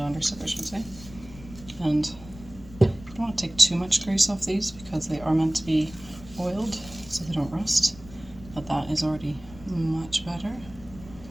soap I should say. And I don't want to take too much grease off these because they are meant to be oiled so they don't rust, but that is already much better.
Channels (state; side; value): noise; left; rumble, 18 dB below the sound